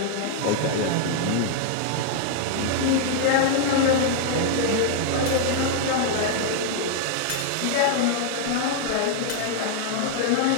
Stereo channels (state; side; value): different; both; correlation 0.00